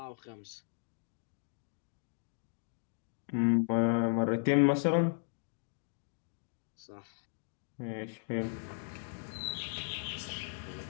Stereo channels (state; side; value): silent; right; digital silence